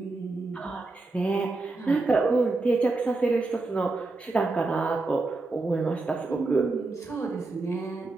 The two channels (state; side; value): quieter; left; 3.4 dB